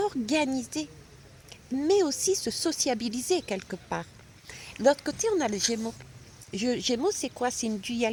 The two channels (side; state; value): both; identical; correlation 1.00